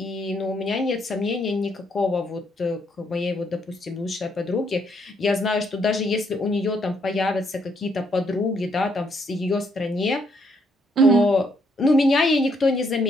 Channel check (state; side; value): normal; both; correlation 0.72